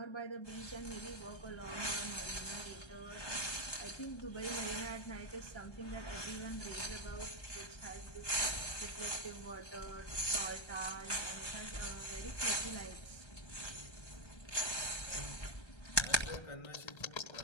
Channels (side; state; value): right; late; 1.3 ms